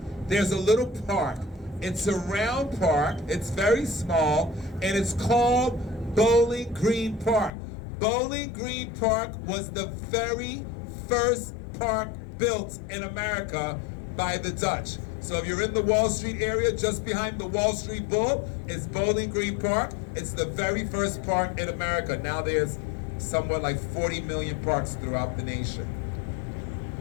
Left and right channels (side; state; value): right; drops out; at 7.5 s